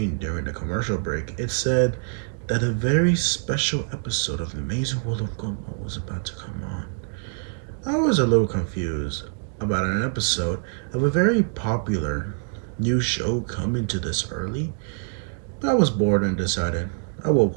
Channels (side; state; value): left; silent; digital silence